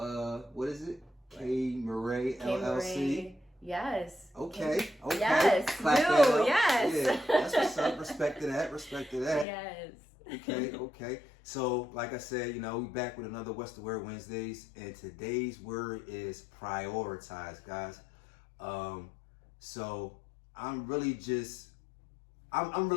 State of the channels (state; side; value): drops out; right; at 9.5 s